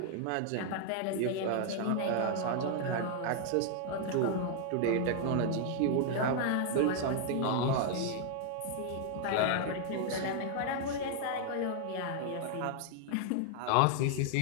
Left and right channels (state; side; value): different; both; correlation 0.00